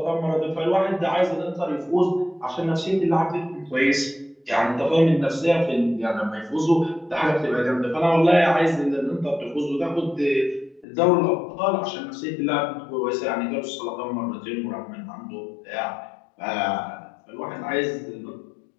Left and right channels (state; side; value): drops out; right; at 10.9 s